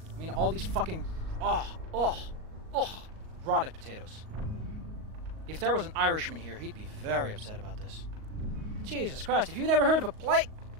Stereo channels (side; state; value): left; late; 38 ms